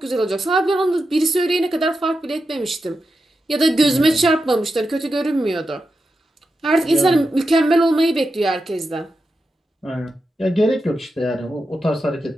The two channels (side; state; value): both; normal; correlation 0.89